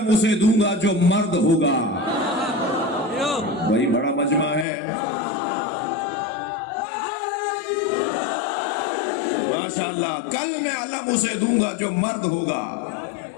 اسے دوں گا جو مرد ہوگا۔ وہی بڑا مجمع ہے، ماشاءاللہ، کل میں علم اسے دوں گا جو مرد ہوگا،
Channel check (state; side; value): drops out; right; at 4.7 s